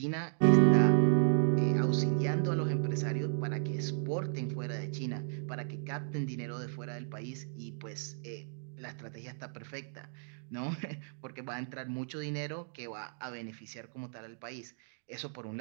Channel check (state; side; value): silent; left; digital silence